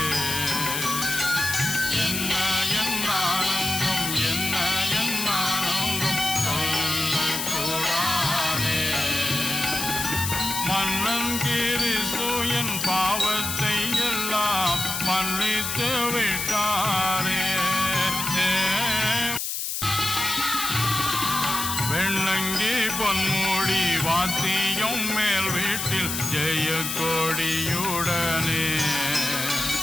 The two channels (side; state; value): left; noise; hiss, 3 dB below the sound